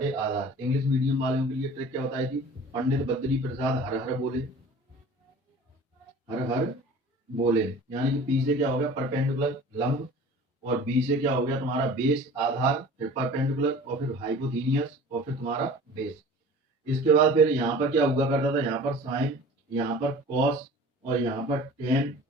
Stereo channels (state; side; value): normal; both; correlation 0.43